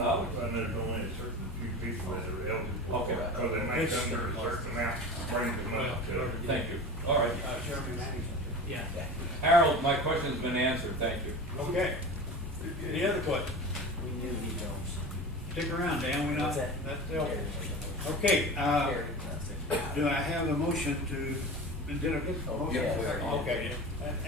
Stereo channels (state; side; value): normal; both; correlation 0.32